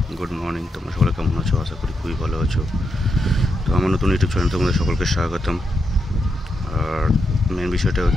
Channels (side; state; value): both; normal; correlation 0.84